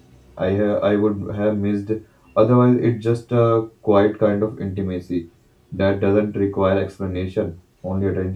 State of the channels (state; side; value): identical; both; correlation 1.00